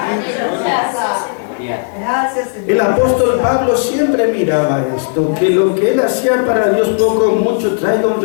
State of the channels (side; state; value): right; silent; digital silence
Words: El apóstol Pablo siempre miraba esto, que lo que él hacía para Dios poco o mucho traiga un